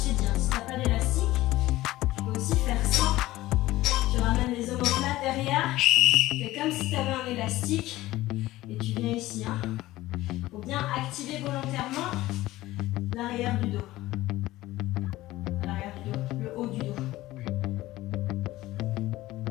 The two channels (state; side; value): quieter; right; 16.9 dB